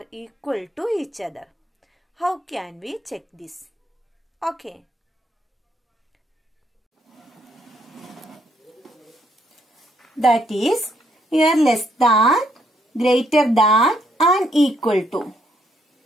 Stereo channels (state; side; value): normal; both; correlation 0.72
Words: equal to each other. How can we check this? Okay. That is, here less than, greater than and equal to.